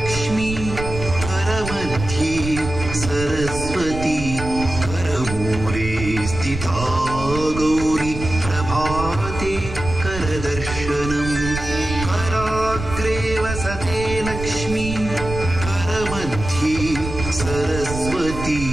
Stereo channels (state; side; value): noise; right; rumble, 8 dB below the sound